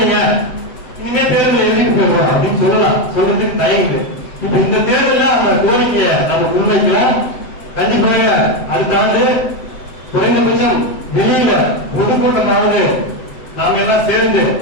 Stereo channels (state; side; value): late; right; 7.9 ms